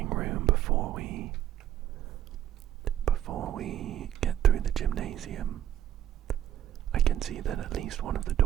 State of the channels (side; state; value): left; quieter; 11.3 dB